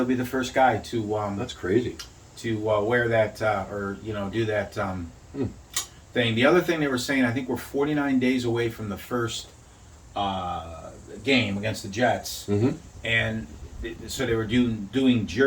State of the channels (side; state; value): both; identical; correlation 1.00